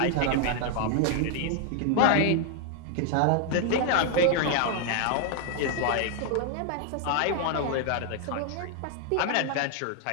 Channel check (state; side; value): different; both; correlation 0.00